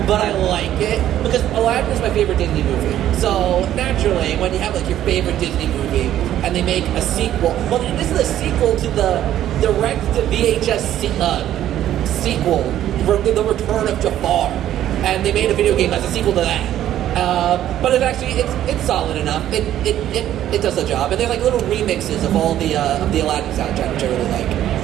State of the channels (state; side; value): quieter; left; 12.0 dB